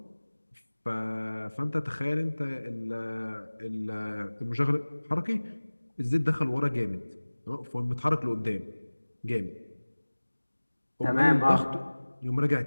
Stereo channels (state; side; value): inverted; both; correlation -1.00